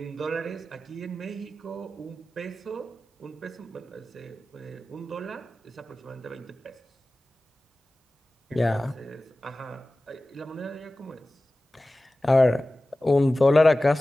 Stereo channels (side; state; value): both; normal; correlation 0.96